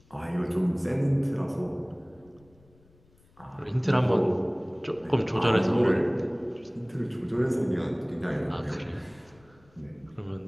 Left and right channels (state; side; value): noise; left; rumble, 29 dB below the sound